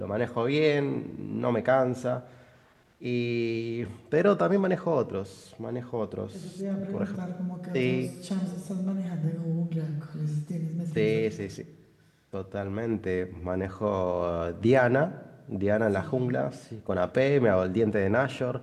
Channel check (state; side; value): identical; both; correlation 1.00